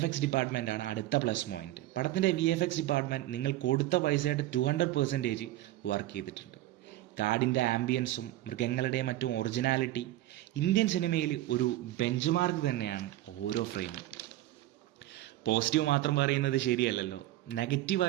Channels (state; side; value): quieter; left; 15.3 dB